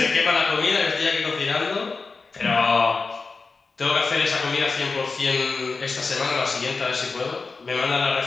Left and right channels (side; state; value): right; quieter; 4.2 dB